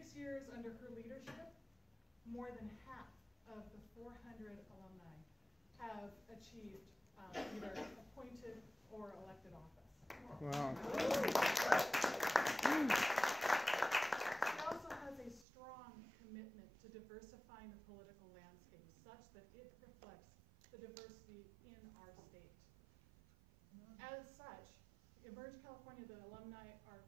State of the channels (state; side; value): drops out; left; at 15.5 s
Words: years under her leadership, more than half of the 400 alumni have achieved either appointed or elected office. Wow. She also has a strong commitment to diversifying the political landscape such that it reflects the diversity in our state. As such, Emerge California, the alumni are